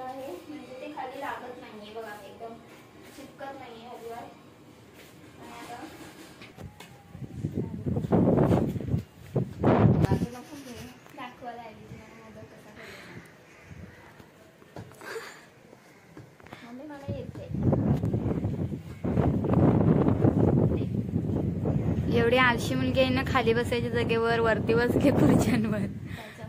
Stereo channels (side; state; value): both; identical; correlation 1.00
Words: आहे. म्हणजे ते खाली लागत नाहीये. बघा एकदम चिपकत नाहीये अजिबात. आणि आता दाखवायला आली तुम्हाला मोदक कसा करायचा. मम्मी मला येते. एवढी आळशी मुलगी आहे ना, खाली बसायच्या जागेवर वरती बसले खुर्च्यांवर. त्याच्या